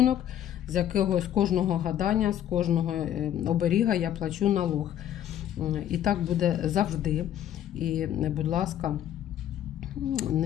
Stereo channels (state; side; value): quieter; right; 10.9 dB